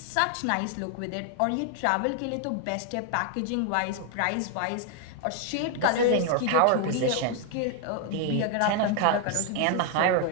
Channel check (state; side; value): different; both; correlation 0.00